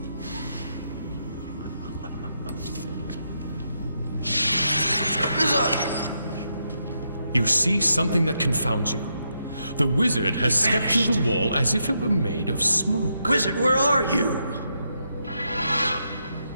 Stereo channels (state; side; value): inverted; both; correlation -0.81